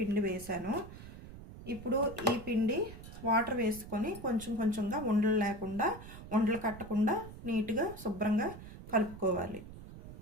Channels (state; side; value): noise; right; rumble, 14 dB below the sound